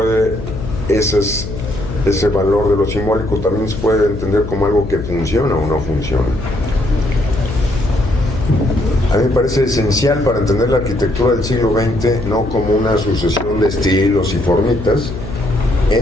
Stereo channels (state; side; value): noise; left; hum, 8 dB below the sound